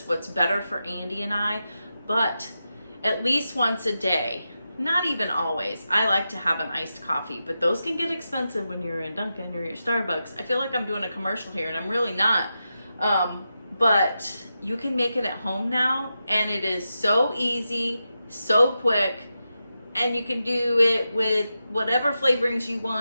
what's better for Andy and I. But at least once a day, not even always, I like to have an iced coffee. But those can get expensive when you're in Dunkin' or your Starbucks. I feel like I'm doing a commercial here and I'm really not. But you can make it at home now, and it is so easy, so quick. And you can do it with whatever flavorings you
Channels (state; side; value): inverted; both; correlation -0.89